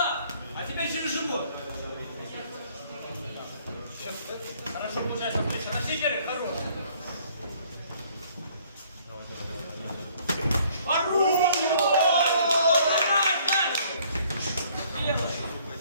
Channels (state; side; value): inverted; both; correlation -0.60